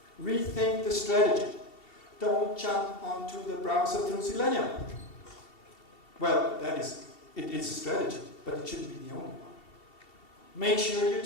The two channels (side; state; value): right; late; 2.7 ms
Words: Rethink the strategy. Don't jump onto the browser through Selenium. Well, it is a strategy, but it shouldn't be the only one. Make sure you